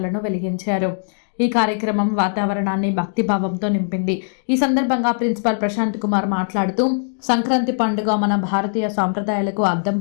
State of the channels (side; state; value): right; silent; digital silence